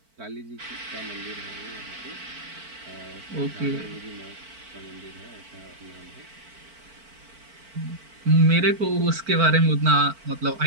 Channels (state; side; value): late; left; 4.5 ms